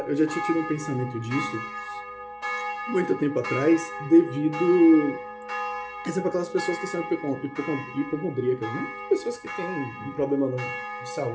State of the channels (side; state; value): both; identical; correlation 1.00